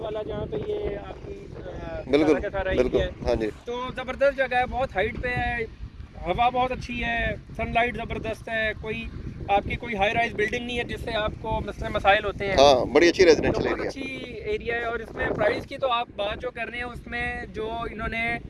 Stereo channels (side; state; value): both; identical; correlation 1.00